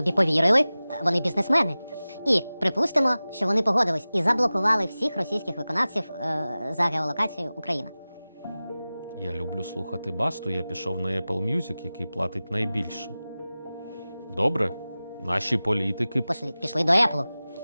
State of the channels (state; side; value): inverted; both; correlation -0.97